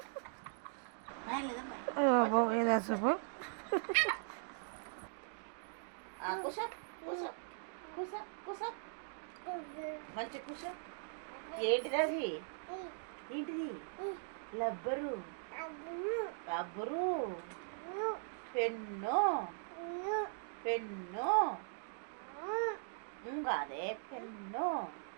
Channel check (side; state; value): left; silent; digital silence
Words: మంచి కూర్చో. ఏంటిది అది? ఏంటిది? రబ్బరు పెన్ను ఇంకాదే పెన్ను.